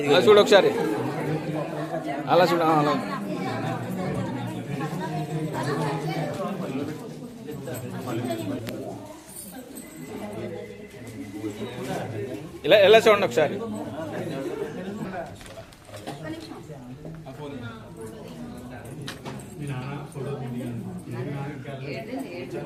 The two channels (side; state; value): both; identical; correlation 1.00